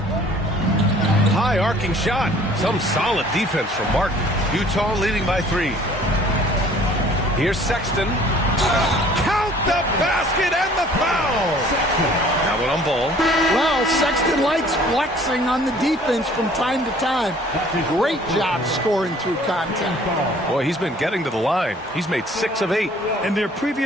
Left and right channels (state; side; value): normal; both; correlation 0.54